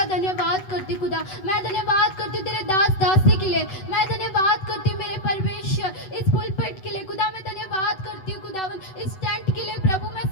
धन्यवाद करती खुदा। मैं धन्यवाद करती तेरे दास दासी के लिए, मैं धन्यवाद करती मेरे परमेश्वर इस पुलपिट के लिए खुदा। मैं धन्यवाद करती हूँ खुदावन इस टेंट के लिए प्रभु, मैं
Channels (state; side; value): late; right; 7.9 ms